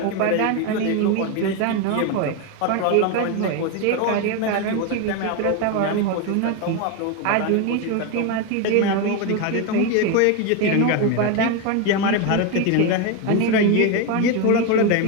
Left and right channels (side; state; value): both; different; correlation 0.02